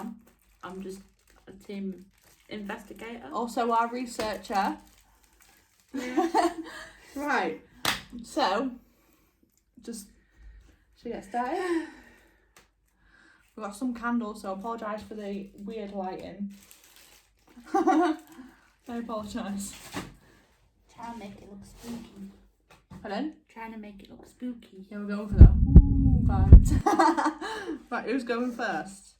I'm just a team investigator. Also our researcher. Yeah. Right, so, should we get started? We've got some candles, so I apologise for the weird lighting. I apologise. Trying to make it look spooky. Pardon? Trying to make it look spooky. Yeah, we're going for the vibes. Right, who's going first?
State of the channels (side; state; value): both; identical; correlation 1.00